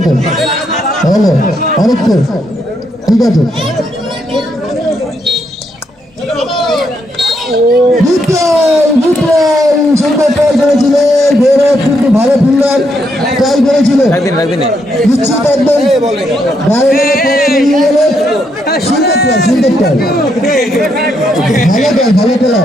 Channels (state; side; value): normal; both; correlation 0.77